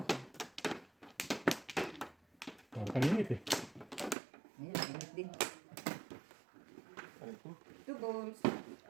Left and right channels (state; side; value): drops out; left; at 4.2 s